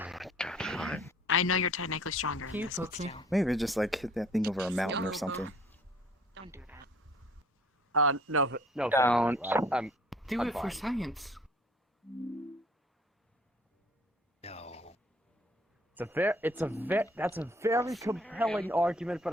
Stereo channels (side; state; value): both; normal; correlation 0.55